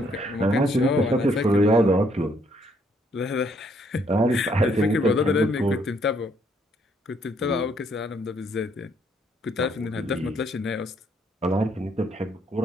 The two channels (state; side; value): normal; both; correlation 0.69